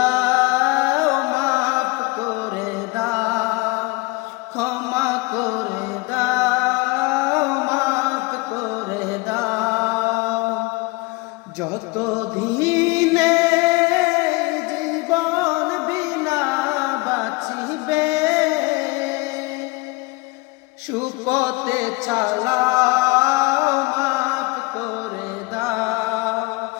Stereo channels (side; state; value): right; quieter; 24.8 dB